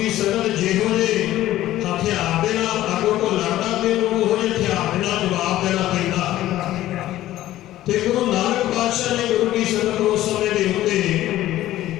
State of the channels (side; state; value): right; quieter; 14.4 dB